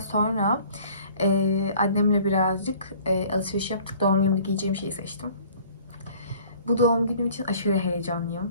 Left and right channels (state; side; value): inverted; both; correlation -0.52